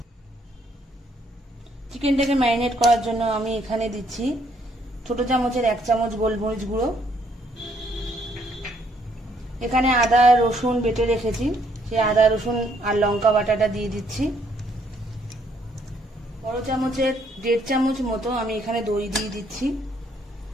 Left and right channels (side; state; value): both; normal; correlation 0.68